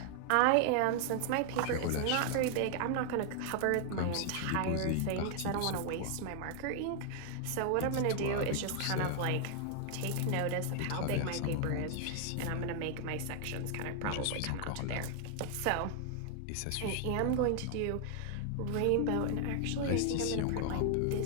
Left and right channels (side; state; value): both; different; correlation 0.00